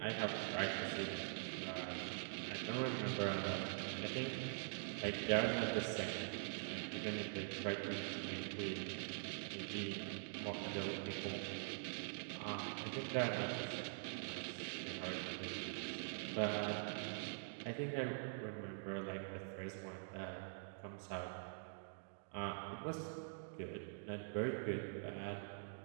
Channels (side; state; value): left; silent; digital silence